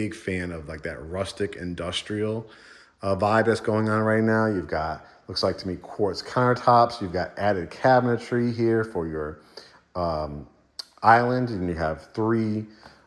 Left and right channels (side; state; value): both; identical; correlation 1.00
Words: fan of like that rustic industrial vibe that's going on right now. You've got, looks like to me, quartz countertops. You've got added cabinetry here for your island, and you have 3